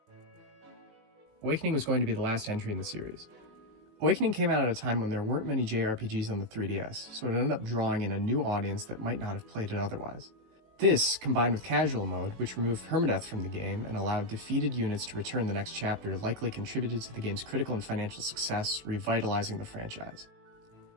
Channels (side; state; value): left; late; 19 ms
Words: Awakening was going to be the last entry in the series. Awakening came out at a time when there weren't many JRPGs on the 3DS, so it ended up drawing in a new audience that might not have played it otherwise. This, combined with casual mode, which removed permadeath from the game and allowed defeated units to return the next chapter, likely contributed to the game's critical and financial success, revitalizing the franchise.